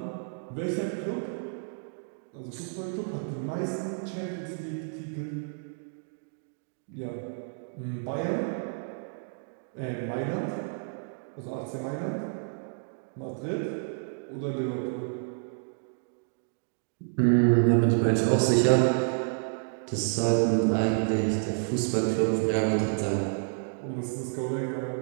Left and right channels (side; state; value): left; silent; digital silence